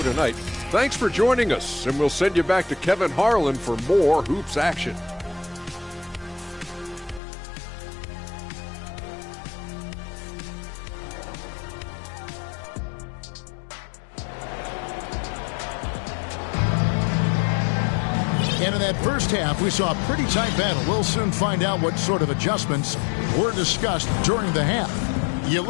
tonight. Thanks for joining us, and we'll send you back to Kevin Harlan for more hoops action. And in that first half, we saw a pretty tight battle. We'll soon find out what sort of adjustments were discussed during the half. You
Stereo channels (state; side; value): drops out; right; at 7.2 s